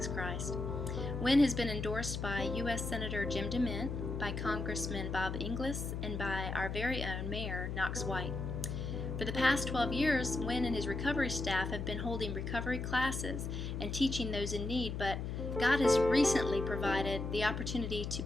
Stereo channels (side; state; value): left; noise; hum, 4 dB below the sound